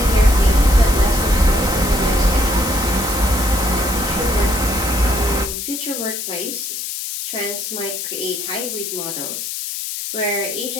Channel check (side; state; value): left; noise; hiss, 5 dB below the sound